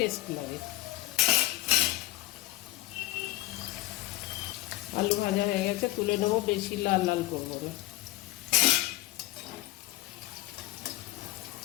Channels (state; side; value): quieter; right; 18.1 dB